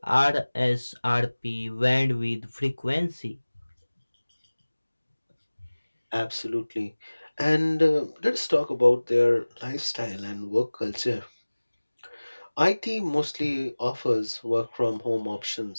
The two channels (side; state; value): both; inverted; correlation -1.00